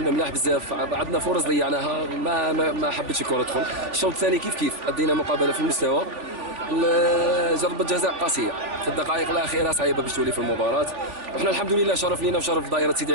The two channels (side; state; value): left; late; 3.5 ms